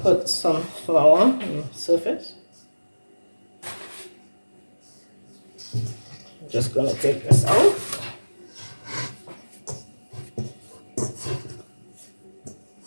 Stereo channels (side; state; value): both; inverted; correlation -1.00